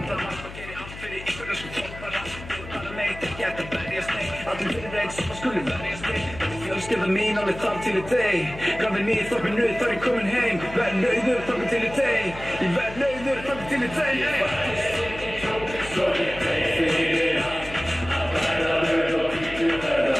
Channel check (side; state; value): left; noise; hum, 13 dB below the sound